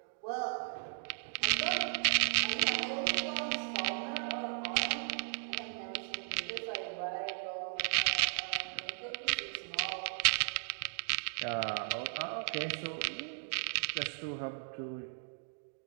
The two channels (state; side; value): silent; left; digital silence